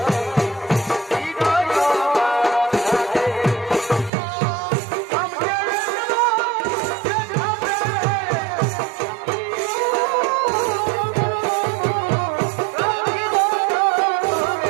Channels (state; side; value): drops out; left; at 4.1 s